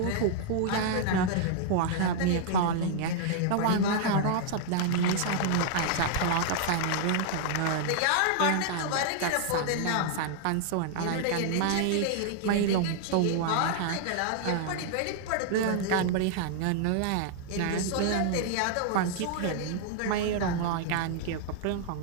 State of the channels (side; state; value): both; different; correlation -0.01